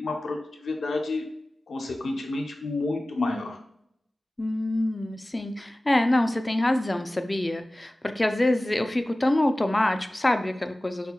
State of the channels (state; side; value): normal; both; correlation 0.97